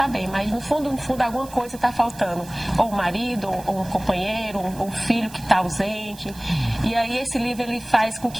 bem, mas no fundo, alguma coisa está faltando. Ou um marido, ou um companheiro, ou um filho que está ausente. E aí esse livro, ele faz com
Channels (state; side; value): noise; right; hiss, 19 dB below the sound